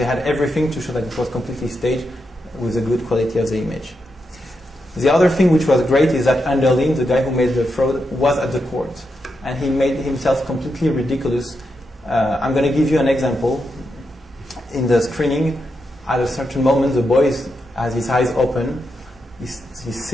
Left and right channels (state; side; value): normal; both; correlation 0.85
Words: had everything to show that it was completely staged with a good quality of the image. The other thing which was great is that Anderlin, the guy who made the fraud, was at the court, and he made himself completely ridiculous. I'm going to give you an example. In the screening, at a certain moment, the boy has his eyes open. He